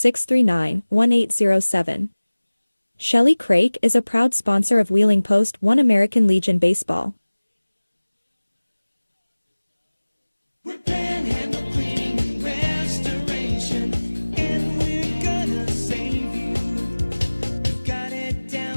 Shelley Craig is a proud sponsor of Wheeling Post 1 American Legion Baseball. Panhandle cleaning and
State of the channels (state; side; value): inverted; both; correlation -1.00